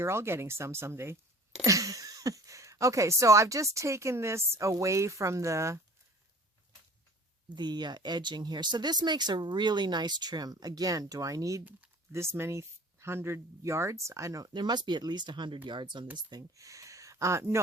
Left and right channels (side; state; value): both; normal; correlation 0.46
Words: all getting some someday. Okay, so I've just taken this away from the edging here. So this makes a really nice trim. Again, do I need this many 100 yards? I don't. There must be at least 100 yards on this thing.